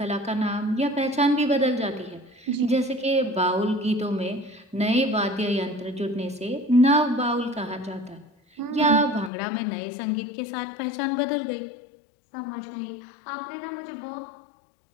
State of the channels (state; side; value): drops out; right; at 9.3 s